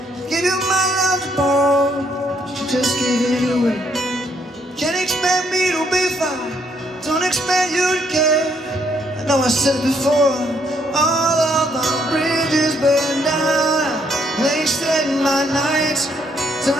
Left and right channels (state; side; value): normal; both; correlation 0.70